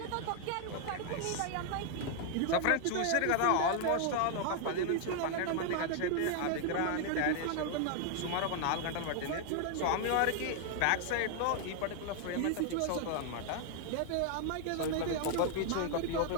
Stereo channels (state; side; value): different; both; correlation 0.00